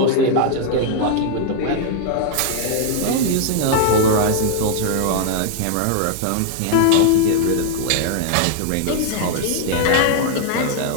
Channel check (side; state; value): both; different; correlation 0.00